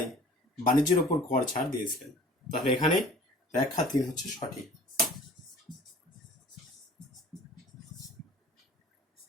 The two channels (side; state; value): both; normal; correlation 0.47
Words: বাণিজ্যের উপর কর ছাড় দিয়েছিলেন। তাহলে এখানে ব্যাখ্যা তিন হচ্ছে সঠিক।